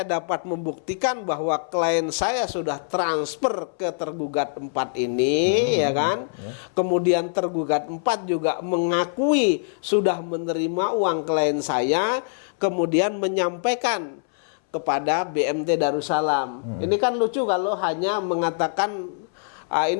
dapat membuktikan bahwa klien saya sudah transfer ke tergugat 4 ini, ya kan? Kemudian tergugat 4 juga mengakui sudah menerima uang klien saya, kemudian menyampaikan kepada BMT Darussalam. Ini kan lucu kalau hanya mengatakan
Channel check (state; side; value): silent; right; 63 dB below the other